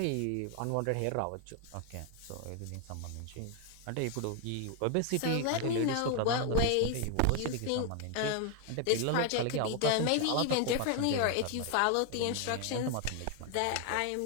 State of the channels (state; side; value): different; both; correlation 0.00